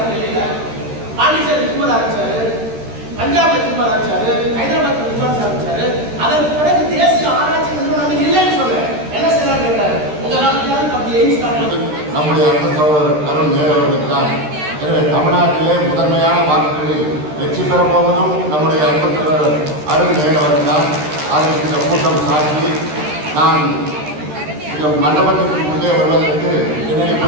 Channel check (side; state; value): left; late; 13 ms